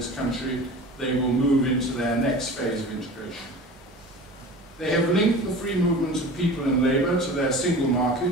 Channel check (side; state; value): both; normal; correlation 0.37